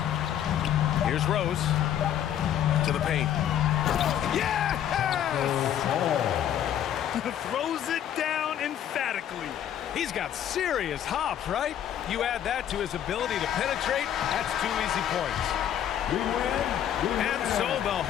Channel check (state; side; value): quieter; right; 10.3 dB